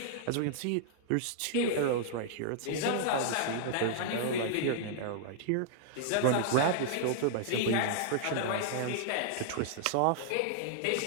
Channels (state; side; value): different; both; correlation -0.01